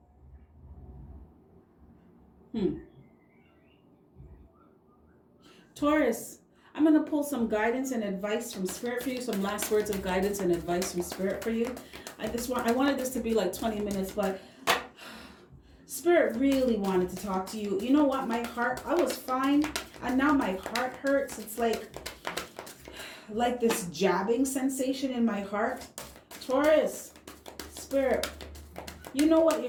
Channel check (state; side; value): identical; both; correlation 1.00